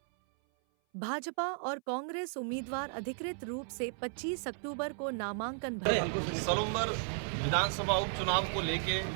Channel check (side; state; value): left; silent; 55 dB below the other